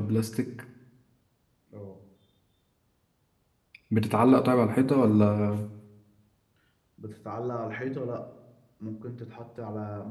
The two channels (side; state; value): both; identical; correlation 1.00